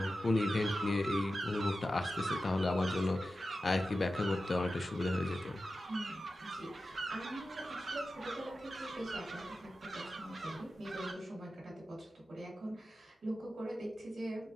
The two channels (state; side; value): normal; both; correlation 0.93